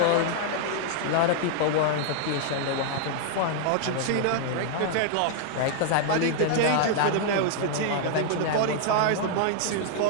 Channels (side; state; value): both; different; correlation -0.01